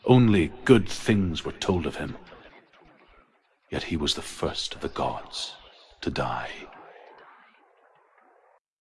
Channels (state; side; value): identical; both; correlation 1.00